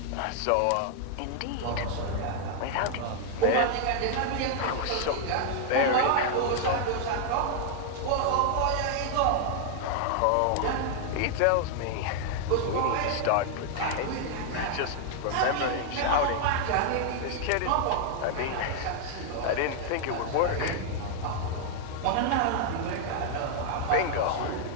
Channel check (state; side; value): different; both; correlation 0.00